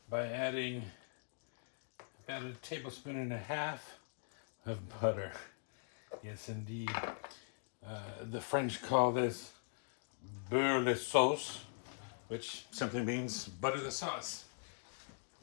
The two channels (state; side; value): silent; right; digital silence